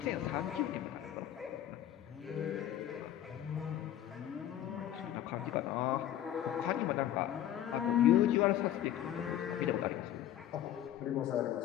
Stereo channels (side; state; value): right; quieter; 11.7 dB